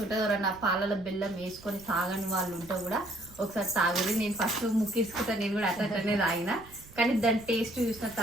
ఉంటుంది. ఎవరన్నా పాలలో బెల్లం వేసుకొని తాగని వాళ్ళు ఉంటే కూడా ఒకసారి తాగుది. నేను ఫస్ట్ ముక్కించుకుంటా, నేను కూడా అట్లనే తాగిన. కానీ దాని టేస్ట్ చూసిన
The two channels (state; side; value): noise; right; rumble, 22 dB below the sound